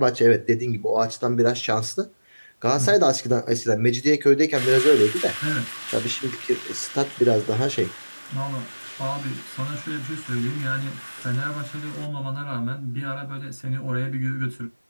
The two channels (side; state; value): both; inverted; correlation -1.00